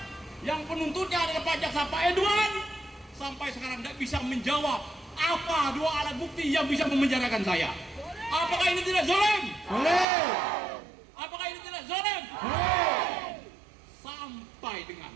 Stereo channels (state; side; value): drops out; left; at 10.1 s